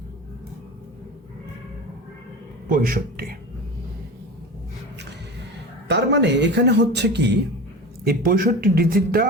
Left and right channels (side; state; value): both; normal; correlation 0.30